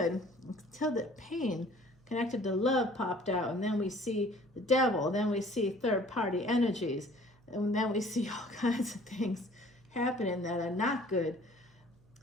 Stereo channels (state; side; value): noise; right; hum, 30 dB below the sound